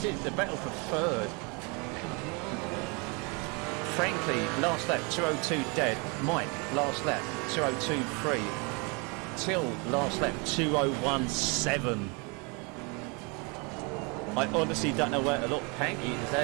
is the battle for third. Frankly, last lap 202 dead. Mike last lap 202.3. Till last lap 201.7. I honestly don't know where to look. Panky is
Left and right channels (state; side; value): quieter; left; 31.2 dB